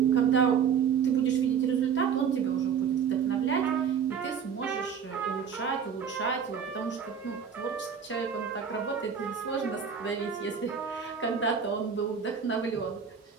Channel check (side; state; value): left; quieter; 7.1 dB